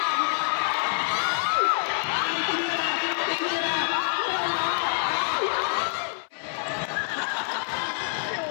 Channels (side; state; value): right; silent; 59 dB below the other